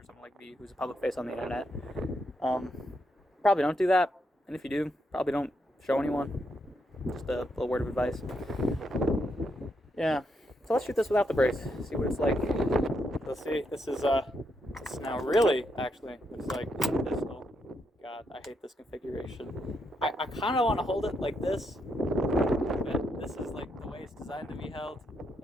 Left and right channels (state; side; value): normal; both; correlation 0.79